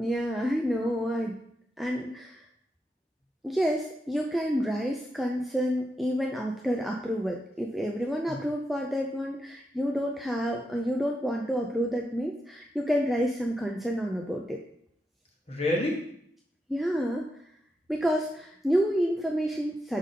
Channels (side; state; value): both; normal; correlation 0.85